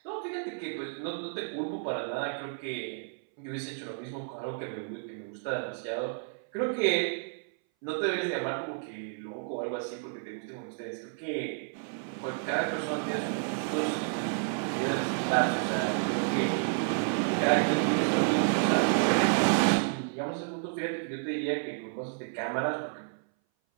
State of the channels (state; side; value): silent; left; 57 dB below the other